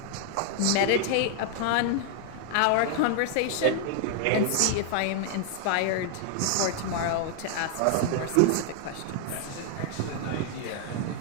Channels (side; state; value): both; different; correlation 0.00